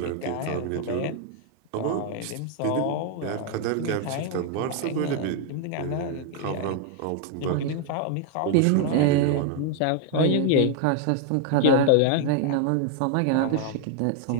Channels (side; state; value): both; different; correlation 0.00